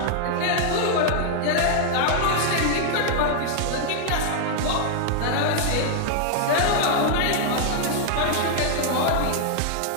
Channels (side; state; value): both; different; correlation 0.00